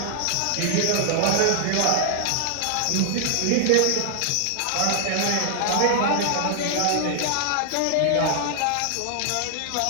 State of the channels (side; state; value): both; different; correlation -0.01